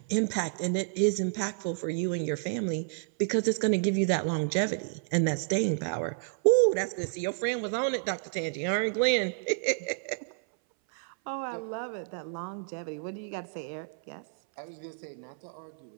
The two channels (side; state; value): left; silent; 58 dB below the other